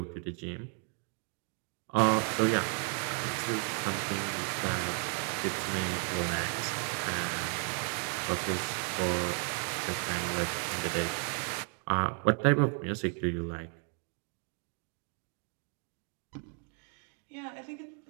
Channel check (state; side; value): quieter; left; 38.6 dB